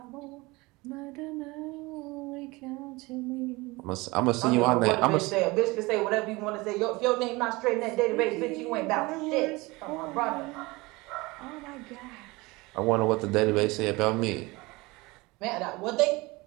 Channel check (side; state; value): left; quieter; 23.0 dB